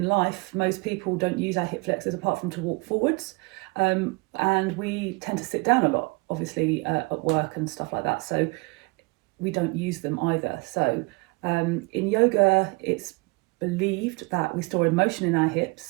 life, most people don't use our hip flexors apart from to walk forwards, and we tend to sit down a lot, obviously at work and stuff like that, so we don't use them either. So in yoga, it's believed that we store emotion in our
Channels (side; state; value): left; quieter; 27.8 dB